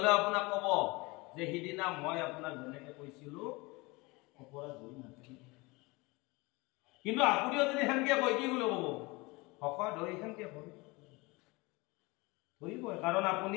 আপোনাক কব যে সিদিনা মই আপোনাক যেনেকে কৈছিলো অপৰাধ হৈ নাথাকিব। কিন্তু আপুনিও যদি সেনেকে কয় কি বুলি কব? শকত হৈ সেনেকে ধৰিবই, কাৰণ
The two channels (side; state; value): right; quieter; 24.6 dB